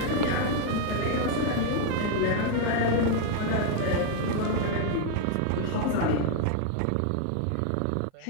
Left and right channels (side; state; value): both; different; correlation 0.00